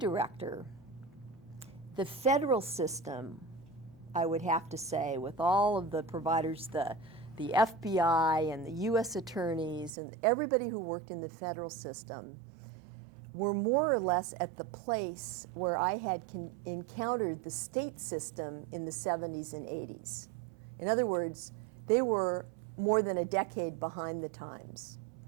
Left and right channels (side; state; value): left; drops out; at 9.9 s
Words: the federal system, I would have to say, with all of the providers, the FBI and the US attorneys and everybody who worked in the federal system, were more or less at the place where I had encountered the state system in the 70s and 80s. In other words, they were more than a decade behind the times.